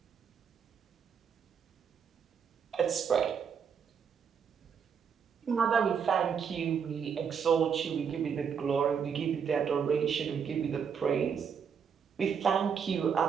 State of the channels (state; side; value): quieter; left; 7.0 dB